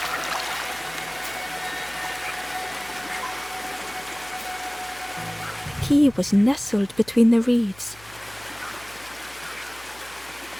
The key tree was nestled between the reeds.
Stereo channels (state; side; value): noise; left; hum, 23 dB below the sound